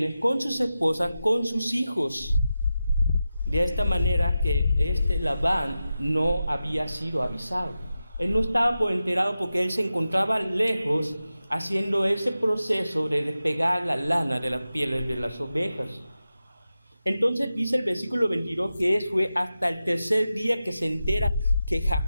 con sus esposas, con sus hijos. De esta manera que Labán no había sido avisado. Él no estaba por enterado porque él se encontraba lejos haciendo ese proceso de despegar la lana de las pieles de las ovejas. Entonces dice el versículo 22 que fue hasta el tercer día que se entera que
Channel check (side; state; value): both; inverted; correlation -0.92